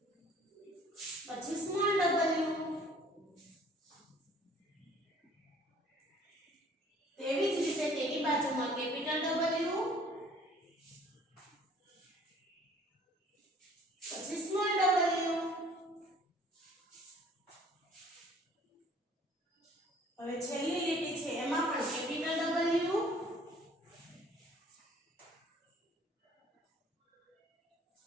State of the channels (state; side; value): normal; both; correlation 0.54